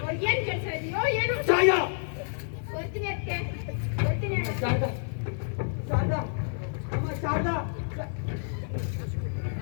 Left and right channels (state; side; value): silent; right; digital silence